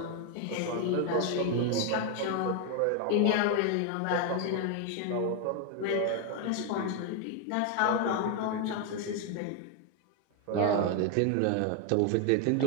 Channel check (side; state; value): both; different; correlation 0.00